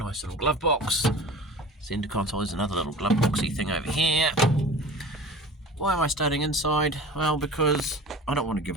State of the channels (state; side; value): normal; both; correlation 0.38